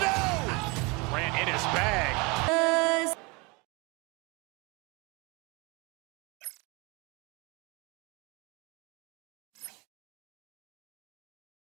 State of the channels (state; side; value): quieter; left; 27.9 dB